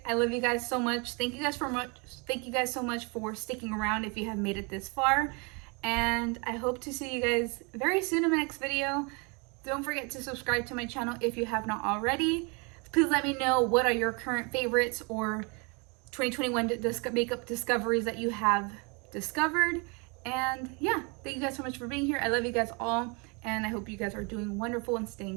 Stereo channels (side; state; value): left; quieter; 31.5 dB